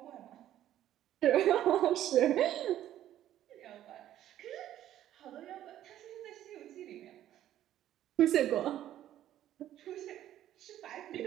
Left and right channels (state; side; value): quieter; left; 12.3 dB